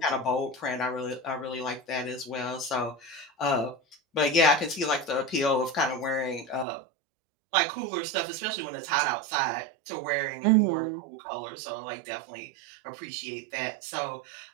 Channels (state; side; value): drops out; left; at 6.7 s